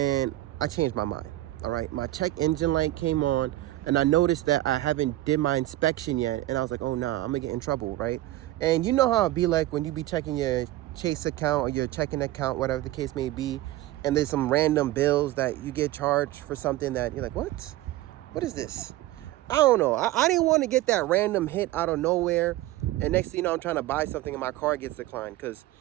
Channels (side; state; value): left; quieter; 16.2 dB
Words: I changed my mind. All right, my check engine light came on, and I noticed that I haven't did my inspection yet, and I was like, oh nah, I'm gonna get in trouble, right? And you know how it be like when you be checking your Chase account or your checking account, whatever the case may be, and there's some random bills that you get charged for something that you're like, what is this? I don't know. I didn't want to get that random hit out of nowhere. And next thing you know, I'm trying to buy something and my car gets declined. Because